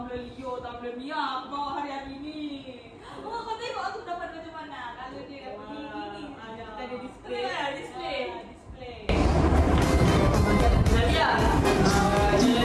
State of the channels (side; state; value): both; identical; correlation 1.00